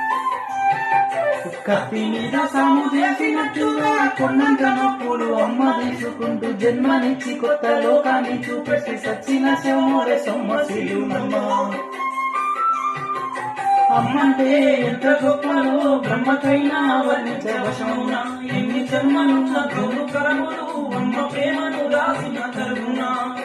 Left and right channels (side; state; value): both; identical; correlation 1.00